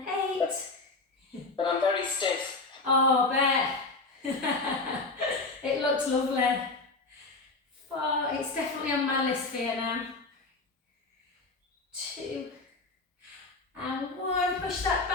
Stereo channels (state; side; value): quieter; right; 3.5 dB